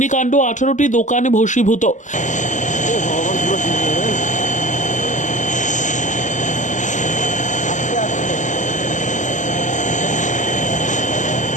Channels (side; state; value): right; late; 0.36 ms